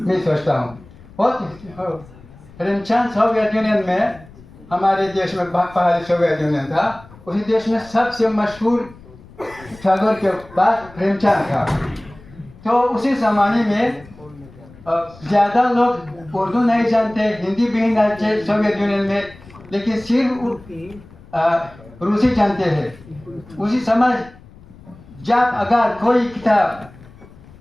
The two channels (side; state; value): left; noise; rumble, 22 dB below the sound